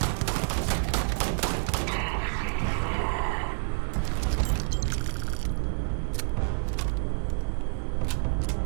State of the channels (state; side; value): silent; left; 59 dB below the other